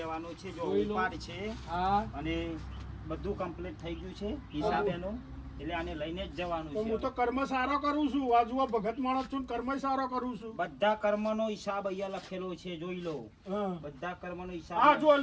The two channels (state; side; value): identical; both; correlation 1.00